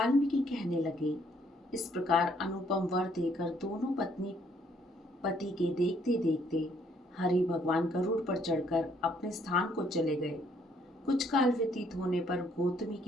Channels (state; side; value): normal; both; correlation 0.67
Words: कहने लगे, इस प्रकार अनुपम वर देकर दोनों पत्नी पति के देखते देखते हरि भगवान गरुड़ पर चढ़कर अपने स्थान को चले गए। कुछ काल व्यतीत होने पर गौतमी